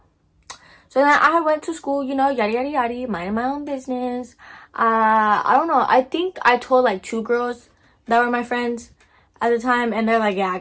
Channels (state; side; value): identical; both; correlation 1.00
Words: So then I went to school, you know, yada yada yada, minding my own business. I don't know, I think I told like 2 girls that were my friends at the time, and they're like, yeah, I